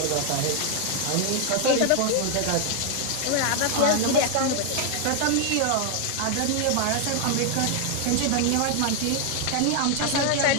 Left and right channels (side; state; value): both; different; correlation 0.00